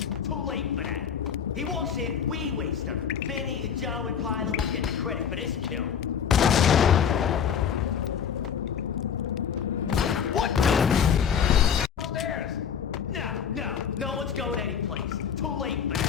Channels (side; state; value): right; quieter; 7.8 dB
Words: Too late for that. He walks in, we waste him. Vinny and Joe and Pilot won't get the credit for this kill. What the? Upstairs! No one's going anyplace. Too late for